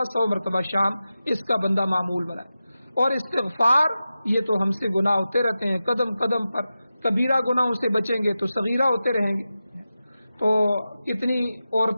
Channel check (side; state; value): both; inverted; correlation -0.93